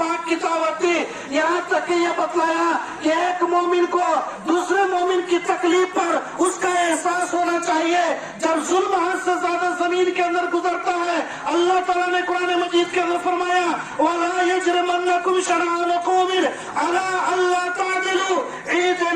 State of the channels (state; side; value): identical; both; correlation 1.00